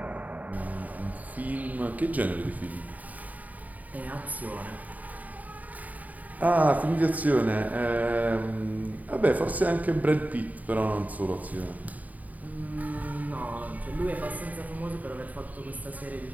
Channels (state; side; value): late; left; 0.075 ms